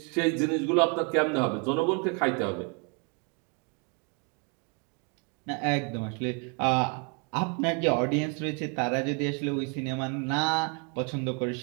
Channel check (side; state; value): left; quieter; 35.2 dB